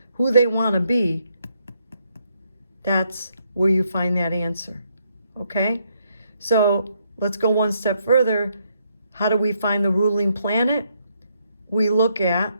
who they want to be, that's where you find that answer. Okay? So let's go one step further. How do we find the ruling planet? We look at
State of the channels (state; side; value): inverted; both; correlation -0.75